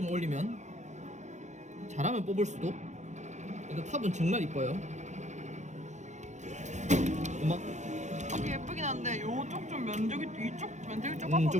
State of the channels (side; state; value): left; late; 0.34 ms